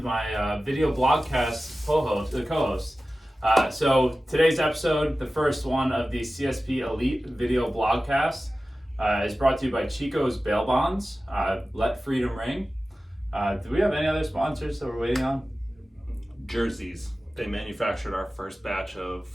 my video blogcast co-host. So today's episode, the first one of the CSP Elite video blogcast, is brought to you by Chico's Bail Bonds. Let Freedom Ring. Do we have any other sponsors that we're waiting on? Jerseys. They manufactured our first batch of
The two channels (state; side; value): normal; both; correlation 0.95